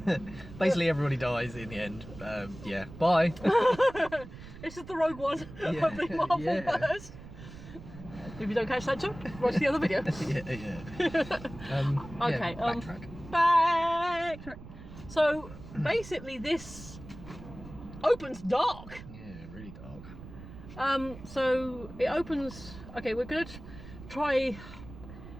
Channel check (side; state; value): right; noise; rumble, 15 dB below the sound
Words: Basically, everybody dies in the end. Yeah. Bye. It's just the Rogue One Yeah, of the Marvel verse. If you don't catch that joke, watch the other video. Yeah. Okay. Backtrack. Backtrack. So basically, this opens dark. Yeah, really dark. So it opens. Okay, we're gonna try